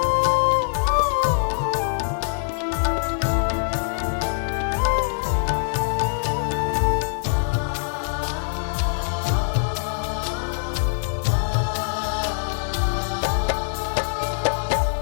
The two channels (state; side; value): silent; right; 63 dB below the other